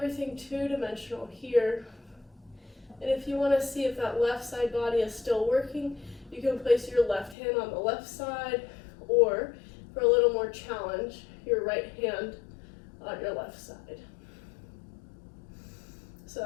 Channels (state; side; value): drops out; right; at 7.4 s